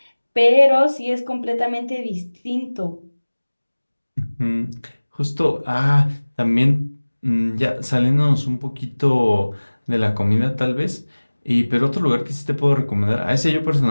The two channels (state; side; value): inverted; both; correlation -1.00